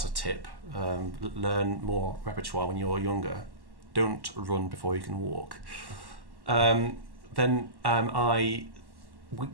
a tip. Learn more repertoire when you're younger. Don't run before you can walk. Then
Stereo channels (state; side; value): late; left; 1.1 ms